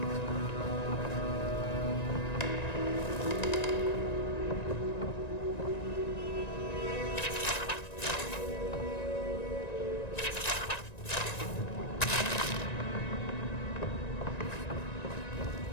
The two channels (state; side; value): late; right; 1.9 ms